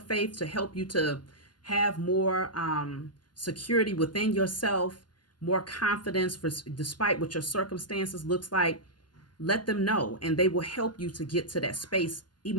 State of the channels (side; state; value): right; late; 0.71 ms